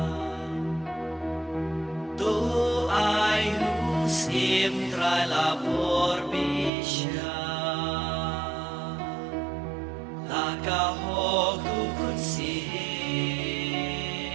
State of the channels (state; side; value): drops out; left; at 6.7 s